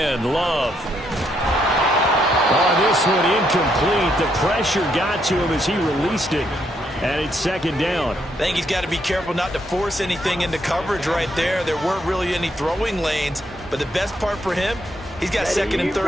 Love. Oh, this one incomplete. The pressure got to him as he released it. And it's 2nd down. I think he's got to be careful not to force anything into coverage right there. There weren't really any throwing lanes. But the best part for him, he's got 2nd and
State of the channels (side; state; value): both; normal; correlation 0.75